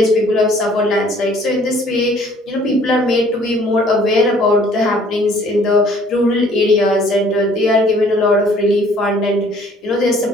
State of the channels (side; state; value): both; normal; correlation 0.57